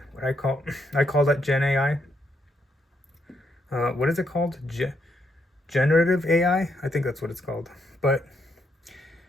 What I call that Gen AI. What is it called? Generative AI? I think that's what it's called. But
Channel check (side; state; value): both; normal; correlation 0.77